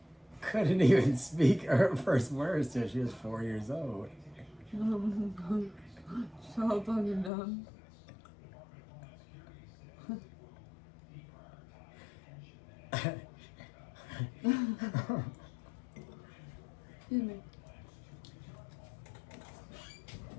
couldn't even speak her first words till she was 4 years old. So fucking dumb. Excuse me.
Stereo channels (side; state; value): right; drops out; at 7.3 s